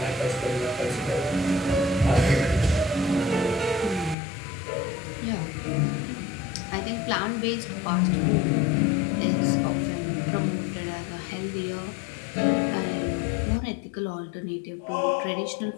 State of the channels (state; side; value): drops out; right; at 4.2 s